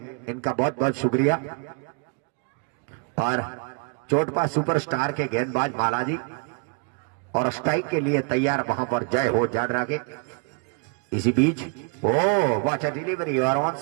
इनका बहुत बहुत शुक्रिया। और चोटपा सुपरस्टार के गेंदबाज माला जी, और स्ट्राइक के लिए तैयार वहां पर जय हो जाडरा के। इसी बीच ओ वॉच डिलीवरी, और ऑन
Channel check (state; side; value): quieter; left; 38.3 dB